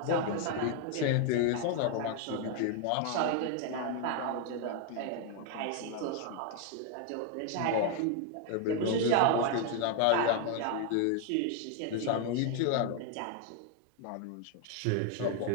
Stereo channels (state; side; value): different; both; correlation 0.01